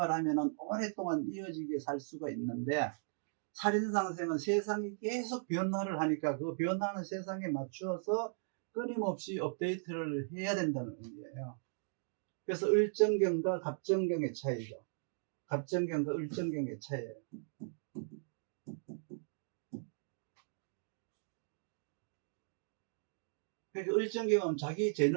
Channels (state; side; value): silent; left; digital silence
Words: 오랫동안 이어지게 살 수가 있는데, 살인상생은 세상이 계속 변화를 하니까 그 변화하는 세상에 맞추어서 끊임없이 업데이트를 해야 된다는 의미예요. 그래서 을정경과 갑정경의 차이죠. 갑정경과 을정경의 차이예요. 그러니까 을정경은 자기